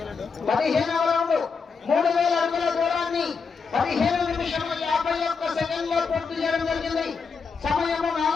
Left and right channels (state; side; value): quieter; right; 5.3 dB